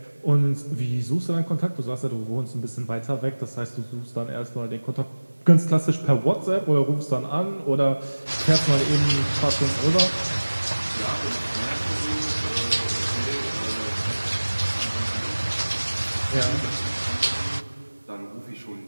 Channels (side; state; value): both; inverted; correlation -1.00